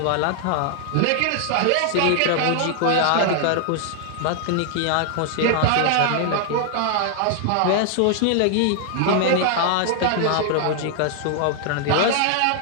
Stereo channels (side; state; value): both; different; correlation 0.00